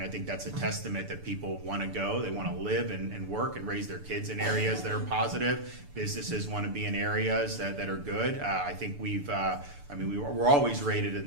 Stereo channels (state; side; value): late; left; 6.9 ms